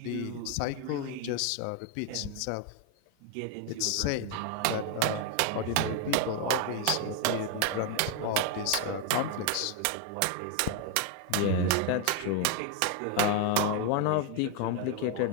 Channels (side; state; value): both; different; correlation 0.01